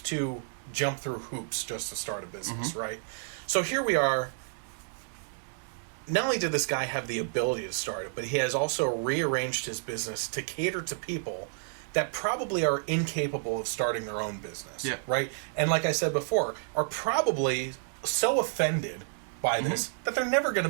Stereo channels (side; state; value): left; silent; digital silence